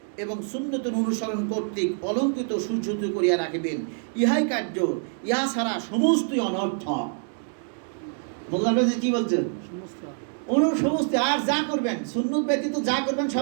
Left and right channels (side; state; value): left; silent; 61 dB below the other